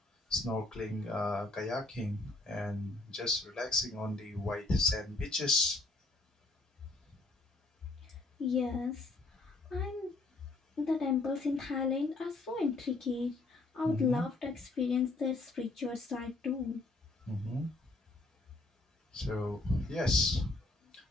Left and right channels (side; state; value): right; quieter; 3.1 dB